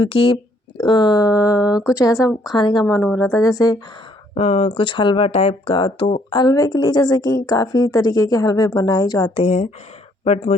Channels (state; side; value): normal; both; correlation 0.66